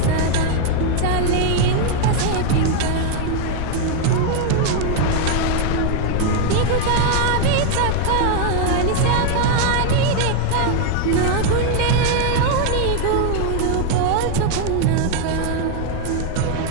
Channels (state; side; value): different; both; correlation 0.00